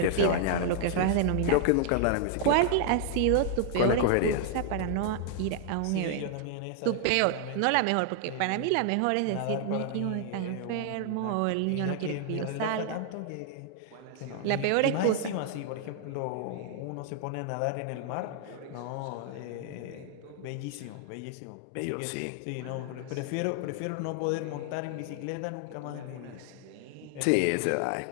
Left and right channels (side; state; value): both; different; correlation 0.00